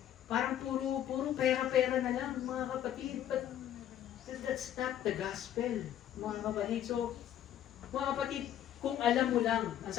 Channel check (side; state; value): right; quieter; 11.1 dB